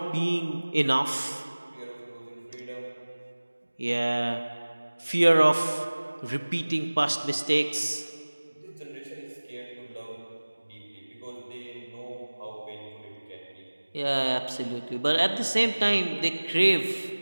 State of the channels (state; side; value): inverted; both; correlation -1.00